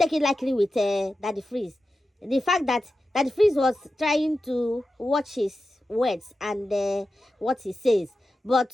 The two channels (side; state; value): both; normal; correlation 0.92